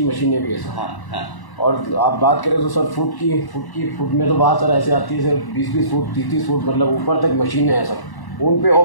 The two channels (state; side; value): late; right; 1.1 ms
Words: मशीनें भी है सर। हाँ। और आप बात करें तो सर फुट में तो बात सर ऐसे आती है सर 20-20 फुट 30-30 फुट मतलब ऊपर तक मशीनें हैं सर। उन पे